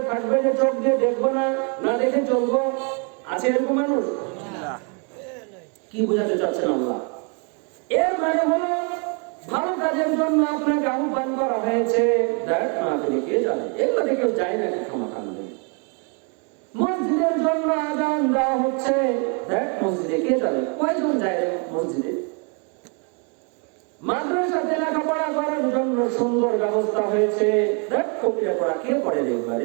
থাকবে যে চোখ দিয়ে দেখবো না, না দেখে চলবো? আছে এরকম মানুষ? কি বোঝাতে চাচ্ছেন আল্লাহ? এর মানে হলো ভালো কাজের জন্য আপনাকে আহ্বান করা হয়েছে, দেখ না আপনি কে জানে, এগুলো কেউ যায় নাকি ক্ষমাকাণ্ডে। মসজিদের জন্য আযান দেওয়া হচ্ছে, দেখ মসজিদে কে যাবে, কয়জন যায় মসজিদে। মাদ্রাসাতে লেখাপড়া করার জন্য সুন্দর ব্যবস্থা হয়েছে, দেখ কবিরা পড়া কে পড়ে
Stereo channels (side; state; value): left; quieter; 36.8 dB